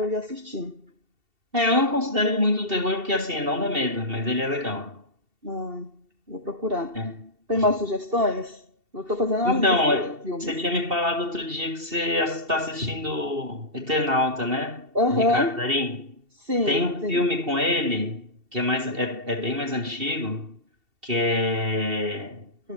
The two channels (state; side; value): late; left; 2.7 ms